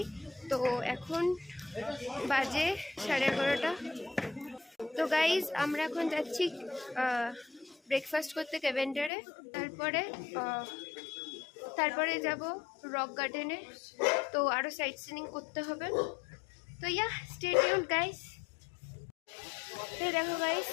তো এখন বাজে 11:30। তো গাইজ আমরা এখন যাচ্ছি ব্রেকফাস্ট করতে ক্যাভেন্ডারে। তারপরে যাব রক গার্ডেনে। তো আরও সাইট সিনিং করতে হবে। তো স্টে টিউনড গাইজ। এই দেখো গাইজ,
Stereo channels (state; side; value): drops out; right; at 9.1 s